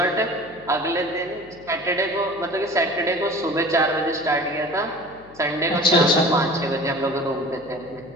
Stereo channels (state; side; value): noise; left; hum, 23 dB below the sound